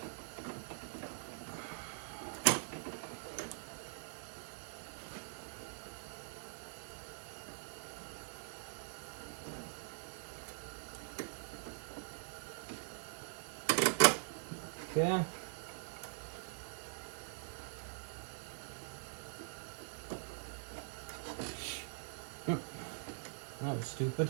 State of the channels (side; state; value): left; silent; digital silence